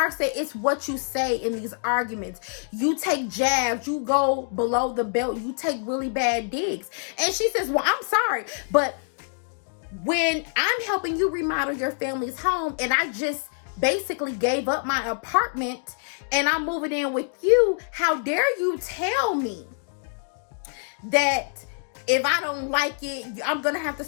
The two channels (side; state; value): right; silent; digital silence